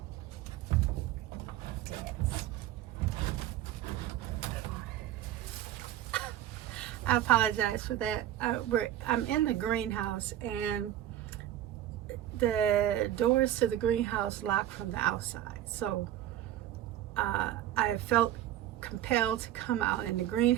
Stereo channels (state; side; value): quieter; left; 12.4 dB